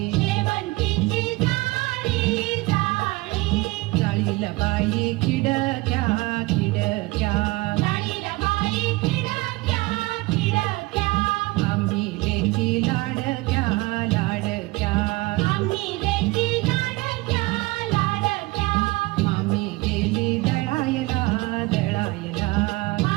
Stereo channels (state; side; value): quieter; left; 22.5 dB